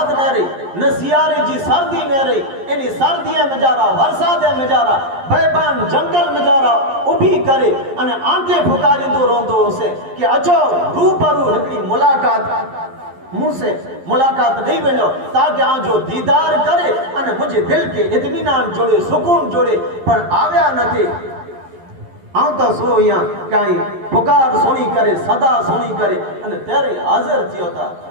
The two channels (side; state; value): left; late; 11 ms